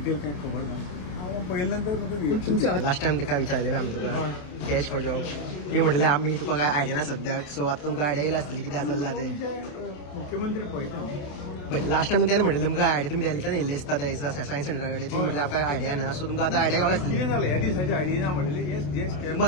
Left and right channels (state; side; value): late; right; 28 ms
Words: कांय खबर ना. हांव पळयल्या नंतर म्हाका तुमच्या लास्ट टायम तुका विचारलें आमी तुका कॅश फॉर जॉब ती म्हटलें आमी तुका काय आयडिया ना सद्याक. सो आतां तुमकां आयडिया येयला आसतली कितें चल्लां तें. मुख्यमंत्री पळयता बट लास्ट टायम तेणें म्हटलें तुमकां आयडिया तुमी दिल्ल्याच्यान येयल्ले आसता त्या सायन्स सेंटरा कडेन ती म्हटलें आमकां आयडिया ना. सो तुमकां आतां आयडिया गावला आसतली. कितें जालें ह्या दिसाची आयडिया ना म्हणलेली